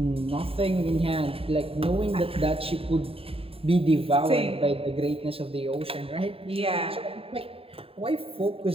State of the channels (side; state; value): left; late; 0.27 ms